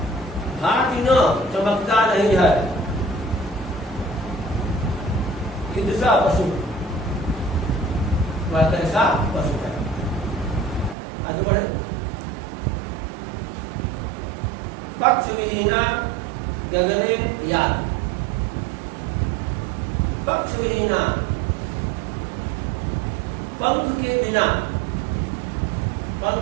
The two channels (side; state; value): left; drops out; at 11.0 s